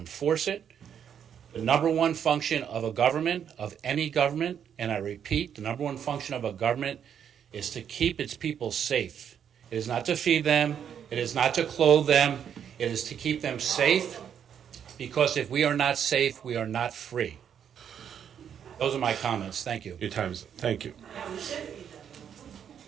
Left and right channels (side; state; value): left; quieter; 8.5 dB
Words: it. The number one function of a government, of any government, and I repeat, the number one function of a government is to keep its people safe. It is not to feed them. It is not to clothe them. It is to keep them safe, because if we are not safe, we are not free. Those are my comments. Thank you. Your time's up. Thank you.